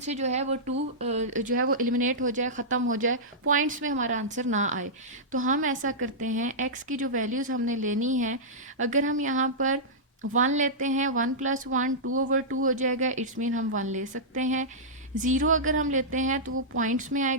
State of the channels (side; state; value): both; normal; correlation -0.13